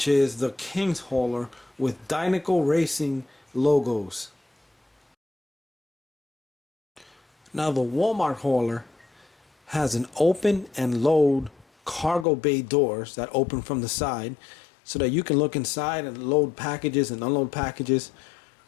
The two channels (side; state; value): right; drops out; at 12.2 s